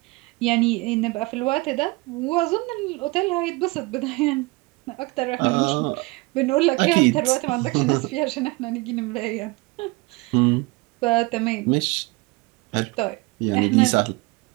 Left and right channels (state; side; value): quieter; left; 24.2 dB